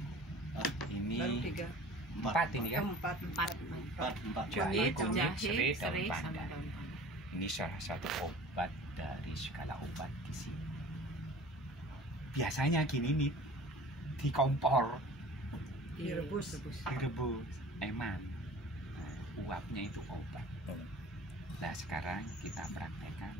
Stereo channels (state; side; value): normal; both; correlation 0.43